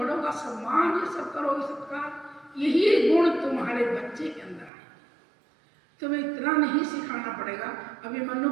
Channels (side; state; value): left; drops out; at 4.7 s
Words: का सम्मान, ये सब करोगी, सत्कार, यही गुण तुम्हारे बच्चे के अंदर आए। तुम्हें इतना नहीं सिखाना पड़ेगा। अभी मनु